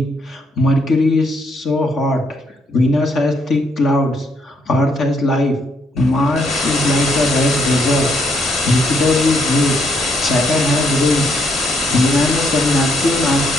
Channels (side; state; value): both; normal; correlation 0.72